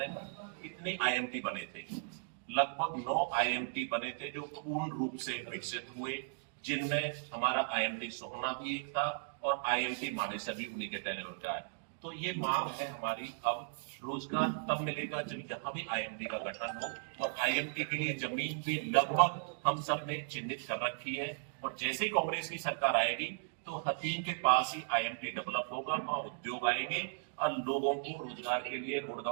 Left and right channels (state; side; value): silent; left; digital silence